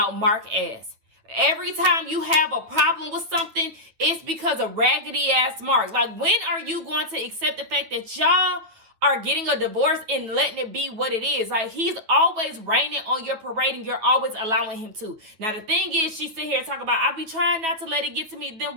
Mark S. Every time you have a problem with something, it's because of raggedy ass Mark. Like, when are you going to accept the fact that y'all are getting a divorce and letting it be what it is? Like, he's always raining on your parade and you're always allowing him to. Now, the thing is, she sit here and talk about, I be trying not to let it get to me. Then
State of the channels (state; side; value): late; left; 9.5 ms